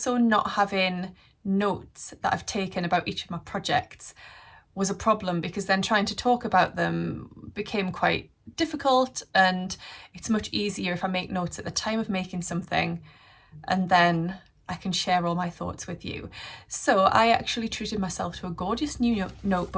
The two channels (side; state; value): both; identical; correlation 1.00